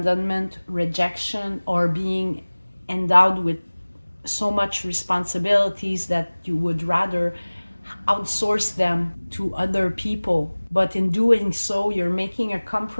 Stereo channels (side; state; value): both; inverted; correlation -1.00